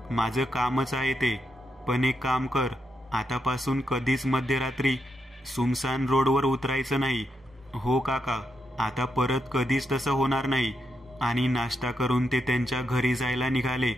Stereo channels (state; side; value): normal; both; correlation 0.83